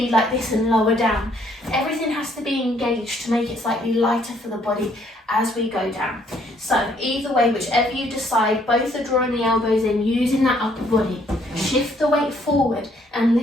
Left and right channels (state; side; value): normal; both; correlation 0.66